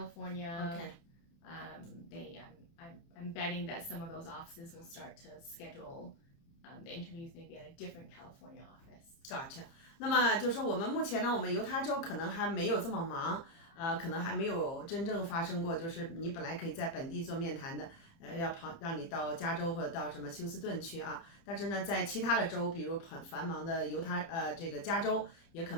I'm betting that some of those offices will start to schedule the interviews maybe at a different California office. Gotcha. 那么就是说我们目前呢，我们犹他州可能还没有这么忙，可能还没有真正发生过，就是你本来可以在本地做面谈的，要让你到加州或者到什么休斯顿去啊，但是呢，在其他的州，比如很繁忙的这个加州，也可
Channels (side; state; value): right; late; 30 ms